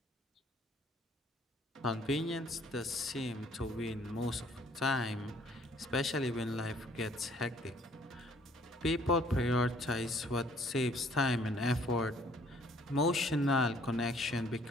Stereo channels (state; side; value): normal; both; correlation 0.60